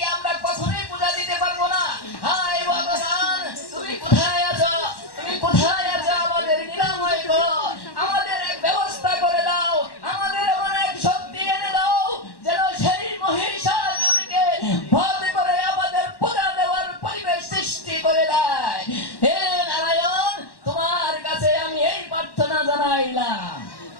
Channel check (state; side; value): late; right; 1.1 ms